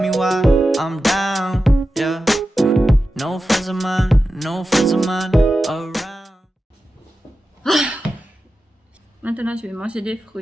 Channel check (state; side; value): normal; both; correlation 0.92